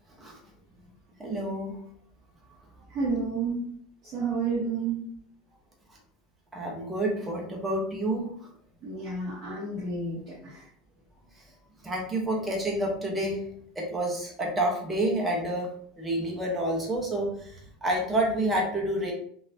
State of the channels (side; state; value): both; normal; correlation 0.30